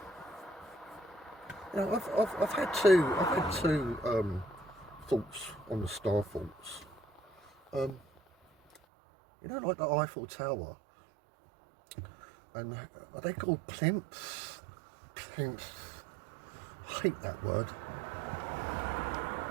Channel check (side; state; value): left; drops out; at 8.8 s